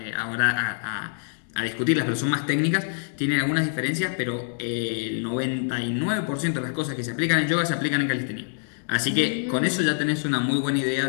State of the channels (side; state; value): right; silent; digital silence